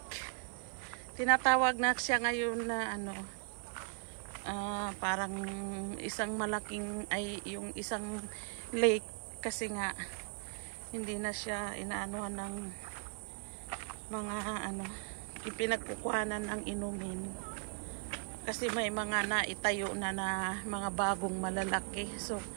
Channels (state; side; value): quieter; left; 39.1 dB